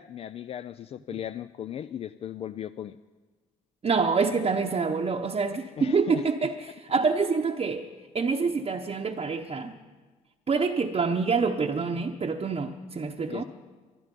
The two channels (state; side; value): quieter; left; 4.0 dB